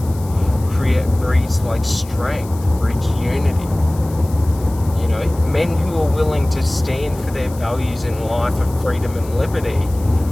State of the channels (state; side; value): noise; left; hiss, 20 dB below the sound